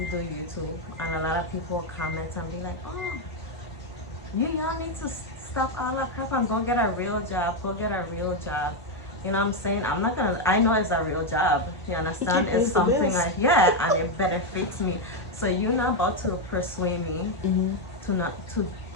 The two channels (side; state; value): both; normal; correlation 0.04